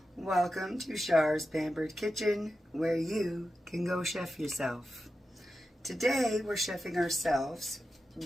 Welcome to Char's Pampered Kitchen, where you can go chef yourself. Today we're chefing ourselves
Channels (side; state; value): both; normal; correlation 0.91